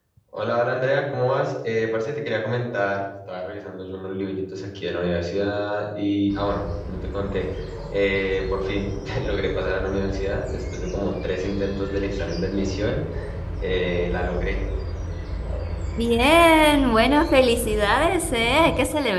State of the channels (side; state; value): both; identical; correlation 1.00